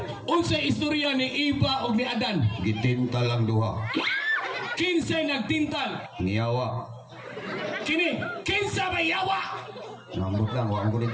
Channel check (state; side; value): identical; both; correlation 1.00